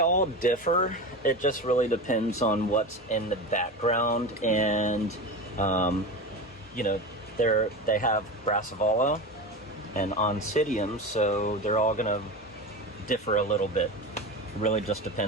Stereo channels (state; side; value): normal; both; correlation 0.25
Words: differ. It just really depends on what's in the background, and they have brassavola and oncidium, so they're all gonna differ a little bit. It really just